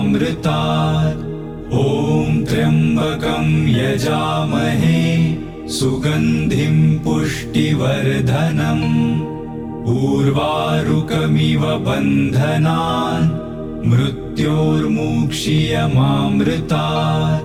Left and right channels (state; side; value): identical; both; correlation 1.00